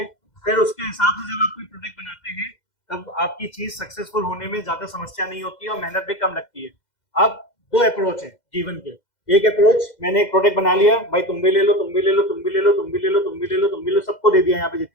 फिर उसके हिसाब से जब आप कोई प्रोडक्ट बनाते हैं तब आपकी चीज सक्सेसफुल होने में ज्यादा समस्या नहीं होती है और मेहनत भी कम लगती है। अब दो अप्रोच है जीवन के। एक अप्रोच, मैंने एक प्रोडक्ट बना लिया, भाई तुम भी ले लो, तुम भी ले लो, तुम भी ले लो, तुम भी ले लो, तुम भी ले लो, तुम भी ले लो, सबको दे दिया यहाँ पे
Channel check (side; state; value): right; late; 2.1 ms